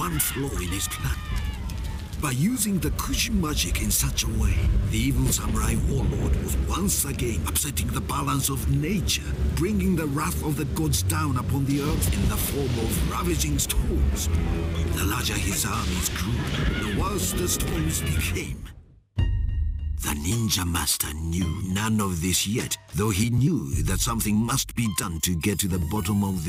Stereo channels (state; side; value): identical; both; correlation 1.00